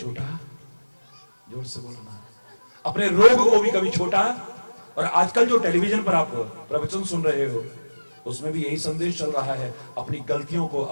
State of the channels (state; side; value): inverted; both; correlation -1.00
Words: जोर से बोलो ना, अपने रोग को भी कभी छोटा। और आजकल जो टेलीविजन पर आप प्रवचन सुन रहे हो, उसमें भी यही संदेश चल रहा है, अपनी गलतियों को,